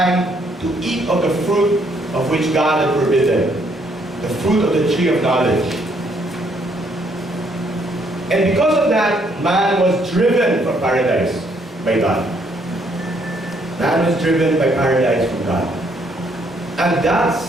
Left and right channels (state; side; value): normal; both; correlation 0.69